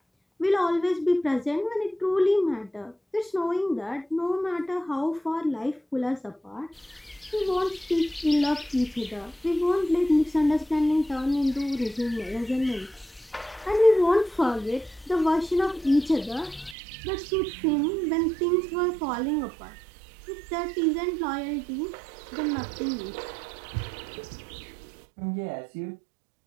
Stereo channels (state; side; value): drops out; left; at 16.8 s